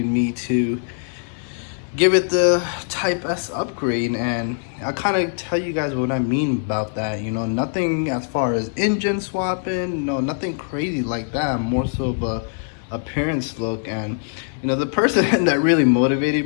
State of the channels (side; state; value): right; silent; 62 dB below the other